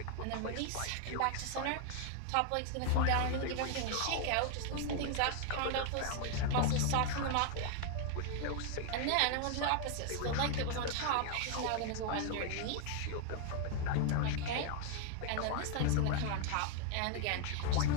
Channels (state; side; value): different; both; correlation 0.00